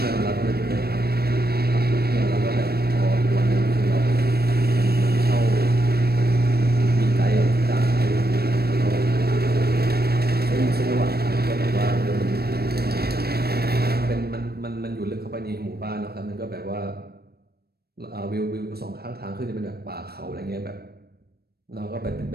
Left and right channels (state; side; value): late; left; 0.46 ms